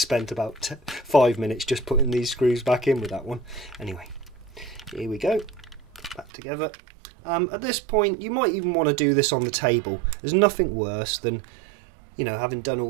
about 5 minutes just putting these screws back in with that one. Anyway, here we go, back together. At this point, you might even want to do this on the table. There's nothing worse than, you know, having done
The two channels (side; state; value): left; drops out; at 6.3 s